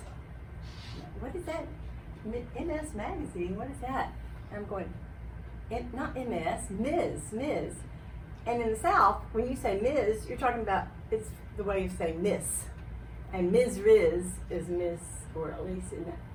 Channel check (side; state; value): both; identical; correlation 1.00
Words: what is that? MS Magazine, what is that? And I'm going, not MS, Ms. And in the South, when you say Ms, you're talking about, it's the way you say Miss. And Ms. Riz is Miss, or at least in